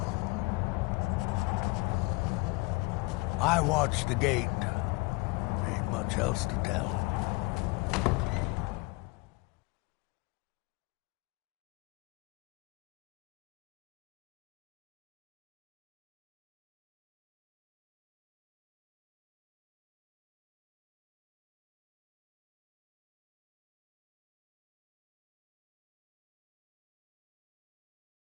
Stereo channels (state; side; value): quieter; right; 25.5 dB